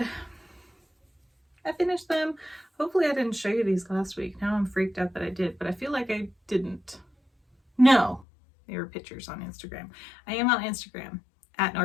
I finished them. Hopefully I didn't show you these last week. Now I'm freaked out that I did, but I feel like I didn't. No, they were pictures on Instagram. I am on Instagram at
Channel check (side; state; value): right; drops out; at 8.2 s